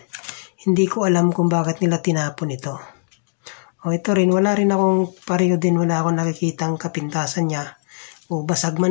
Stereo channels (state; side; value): silent; right; digital silence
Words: hindi ko alam kung bakit nila tinapon ito. O ito rin, wala rin akong pareho din. Wala akong nakikitang kapintasan niya. O basag